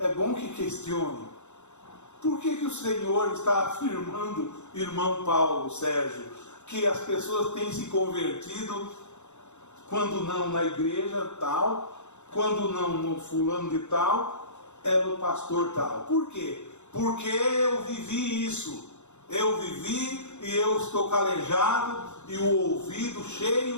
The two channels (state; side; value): late; right; 0.83 ms